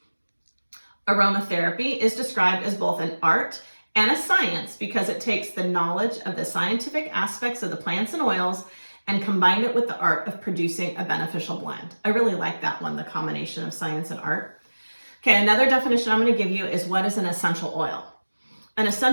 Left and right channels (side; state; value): both; inverted; correlation -1.00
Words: Aromatherapy is described as both an art and a science because it takes the knowledge of the scientific aspects of the plants and oils and combined it with the art of producing a beneficial blend. I really like that one, the combination of science and art. Okay, another definition I'm going to give you is what is an essential oil. An